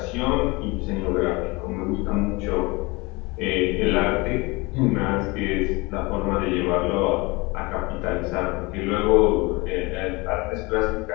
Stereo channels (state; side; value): quieter; right; 25.0 dB